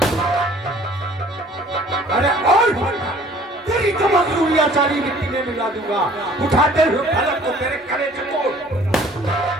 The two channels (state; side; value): normal; both; correlation 0.53